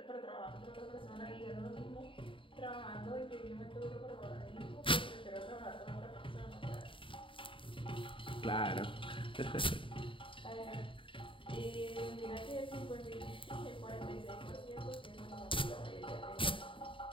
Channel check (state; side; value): late; right; 0.25 ms